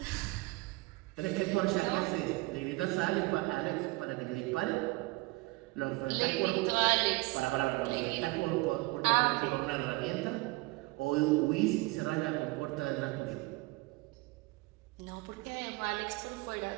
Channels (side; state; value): left; quieter; 23.6 dB